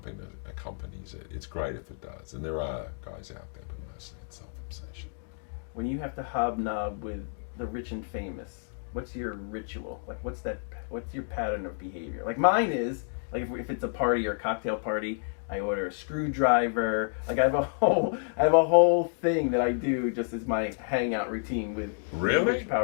it. It's great if it does. And there are guys out there, but mostly it's self-obsession. When you have to hobnob with the rich and famous, what's your ritual? Like, what's your pattern of behavior? Like, mine is, like, if it's a party or a cocktail party, I order a screwdriver. Like, I have a whole thing that I do just as my hangout routine with Really? rich,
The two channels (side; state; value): right; silent; digital silence